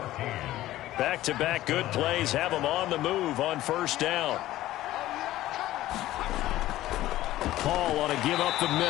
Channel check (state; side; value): quieter; right; 15.1 dB